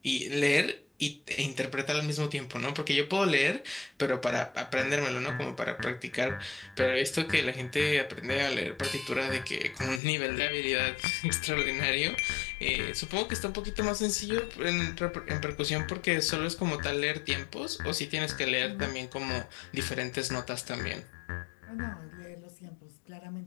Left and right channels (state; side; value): drops out; right; at 10.0 s